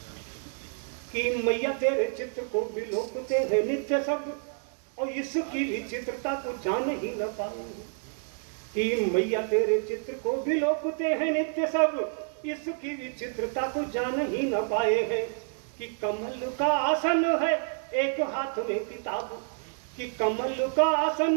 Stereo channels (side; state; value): left; silent; 59 dB below the other